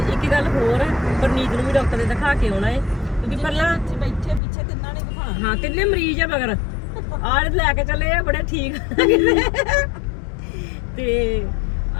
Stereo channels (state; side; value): drops out; right; at 4.4 s